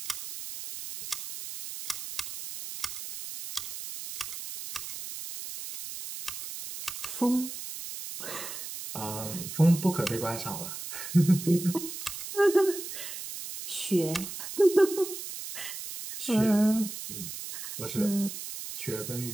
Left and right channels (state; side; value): noise; right; hiss, 8 dB below the sound